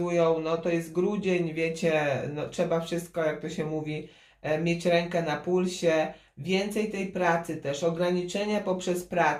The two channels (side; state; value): both; identical; correlation 1.00